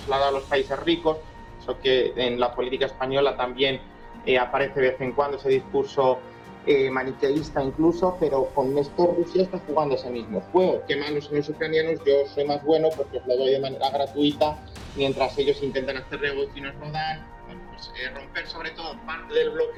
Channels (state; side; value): identical; both; correlation 1.00